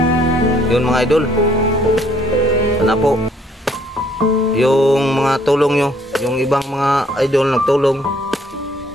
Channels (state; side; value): normal; both; correlation 0.64